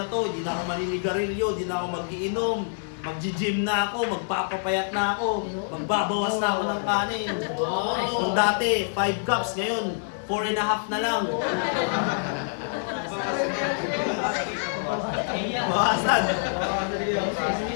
to, hindi na ako maninigarilyo, hindi na ako mag-iinom, mag-gym na ako, magpapapayat na ako, magbabawas na ako ng kanin. Kung dati, 5 cups, ngayon, 4.5 na lang. Bawasan.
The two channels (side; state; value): right; silent; 59 dB below the other